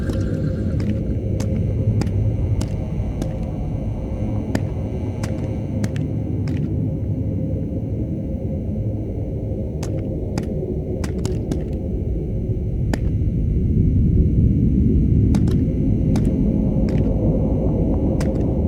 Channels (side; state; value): both; identical; correlation 1.00